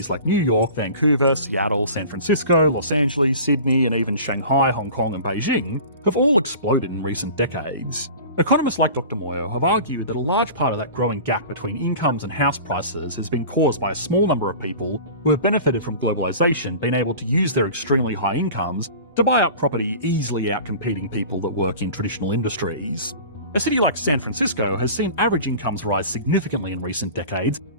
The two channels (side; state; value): both; inverted; correlation -0.39